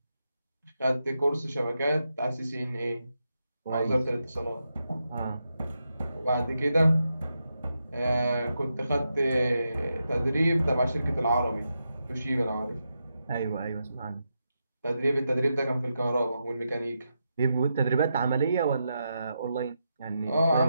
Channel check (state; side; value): inverted; both; correlation -0.86